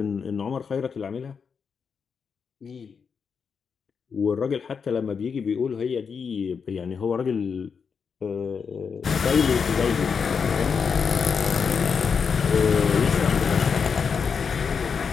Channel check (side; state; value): right; quieter; 6.1 dB